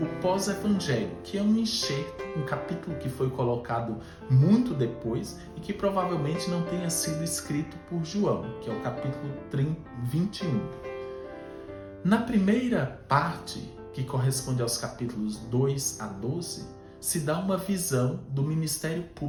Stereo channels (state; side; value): identical; both; correlation 1.00